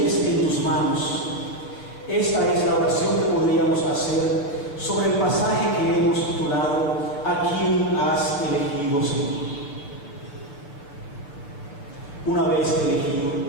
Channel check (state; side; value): late; right; 6.9 ms